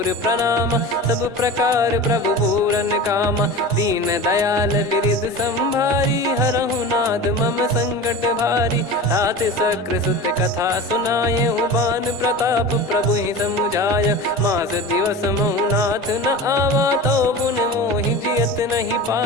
प्रणाम, सब प्रकार प्रभु पूरन कामा। दीन दयाल बिरिद संभारी, हरहु नाद मम संकट भारी। तात सक्र सुत कथा सुनाए, बान प्रताप प्रभु ही समुझाय। मास दिवस महु नाथ न आवा, तो पुन मोहि जियत नहीं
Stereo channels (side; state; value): both; normal; correlation 0.32